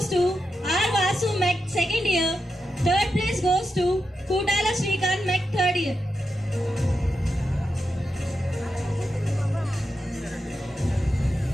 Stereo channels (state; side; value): normal; both; correlation 0.87